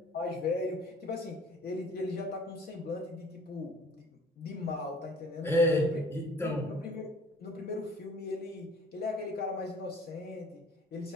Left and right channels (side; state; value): both; normal; correlation 0.52